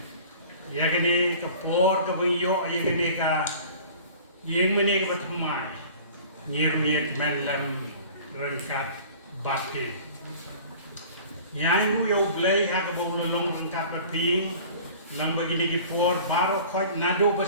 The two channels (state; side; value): inverted; both; correlation -0.44